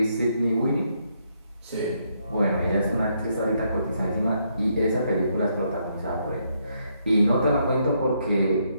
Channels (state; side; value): inverted; both; correlation -0.75